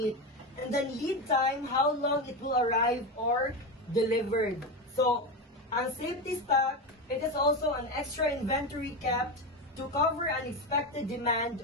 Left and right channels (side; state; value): both; normal; correlation 0.17